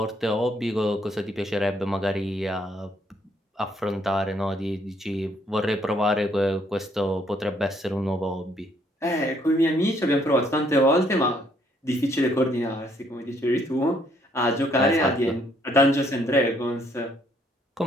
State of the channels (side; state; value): both; normal; correlation 0.68